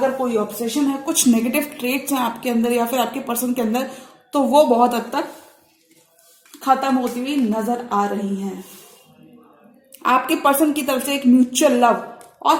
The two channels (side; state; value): both; identical; correlation 1.00